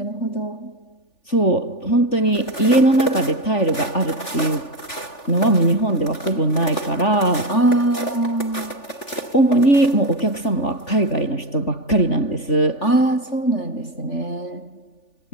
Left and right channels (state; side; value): late; right; 3.4 ms